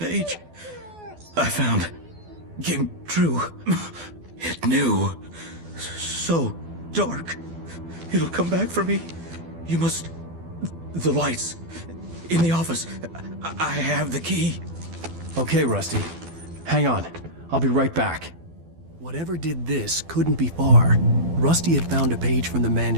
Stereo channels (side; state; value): left; late; 12 ms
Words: I found. Came true. It knew. So dark. It'll come back for me. You must... The lights. In the office. I have the key. Okay, Rusty. Hang on. I'll be right back. Whatever did this couldn't be far. Rusty had found a page from the